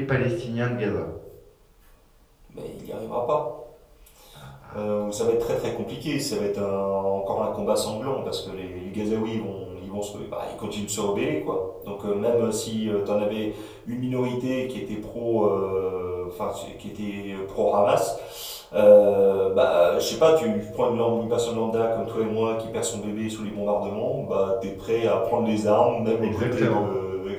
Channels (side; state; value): both; identical; correlation 1.00